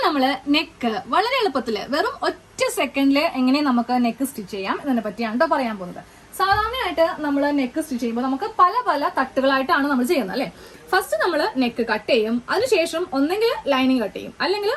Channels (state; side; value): identical; both; correlation 1.00